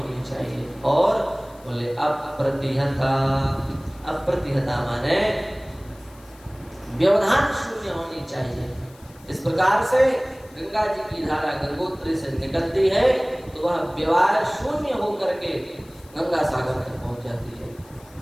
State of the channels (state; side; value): noise; left; hiss, 26 dB below the sound